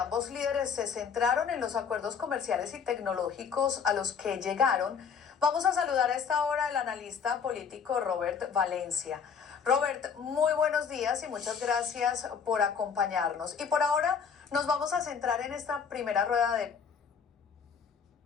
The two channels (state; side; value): quieter; right; 6.5 dB